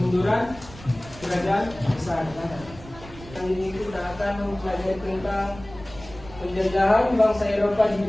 kerajaan besar. Yang ini kita akan mempelajari tentang penjajahan bangsa Eropa di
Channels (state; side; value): noise; right; rumble, 17 dB below the sound